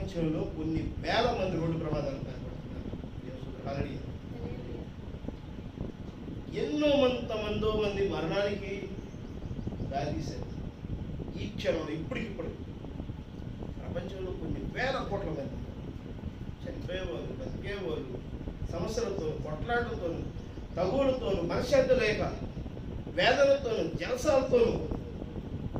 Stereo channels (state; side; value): identical; both; correlation 1.00